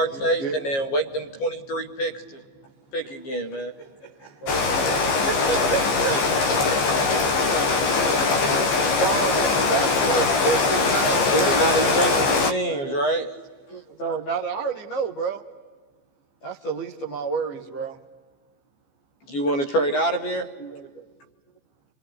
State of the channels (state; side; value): late; right; 15 ms